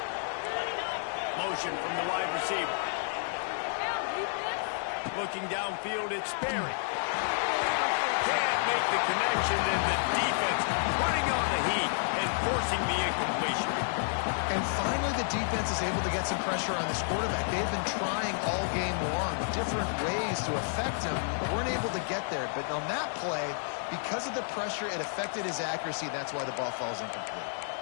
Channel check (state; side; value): silent; right; 57 dB below the other